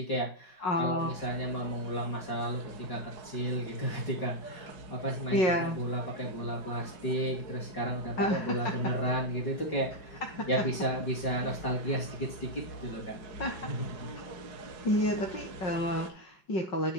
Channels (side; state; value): right; late; 5.2 ms